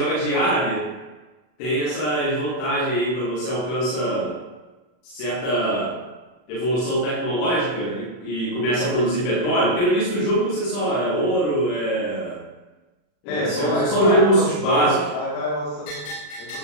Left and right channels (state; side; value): late; right; 40 ms